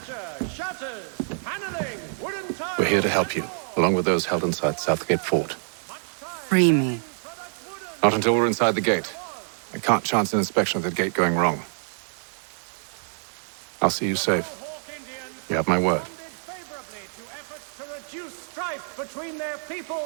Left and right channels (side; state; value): left; silent; digital silence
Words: shutters, paneling, wooden tiles. We're here to help you, along with those held inside Southgate Fort. Free me. Not until we're inside the gate. I can't chance an inspection of the gate going wrong. I'll see you safe. You have my word. Favorably to efforts to reduce strife between their